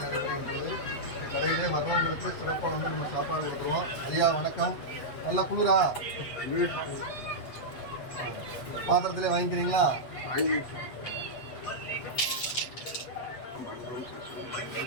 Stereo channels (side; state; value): right; late; 8.1 ms